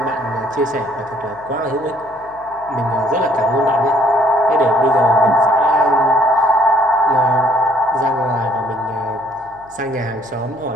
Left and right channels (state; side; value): noise; left; hum, 26 dB below the sound